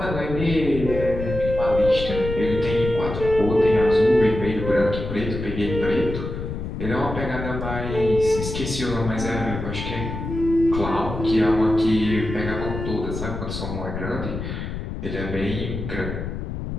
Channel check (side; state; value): left; noise; rumble, 6 dB below the sound